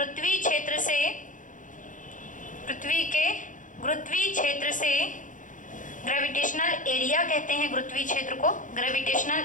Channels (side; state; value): right; late; 0.37 ms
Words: क्षेत्र से, ग्रेविटेशनल एरिया कहते हैं गुरुत्वीय क्षेत्र को,